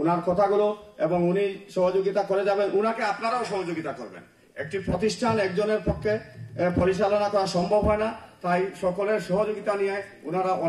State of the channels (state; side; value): identical; both; correlation 1.00